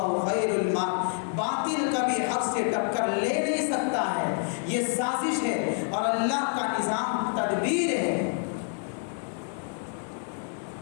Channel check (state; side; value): silent; right; 56 dB below the other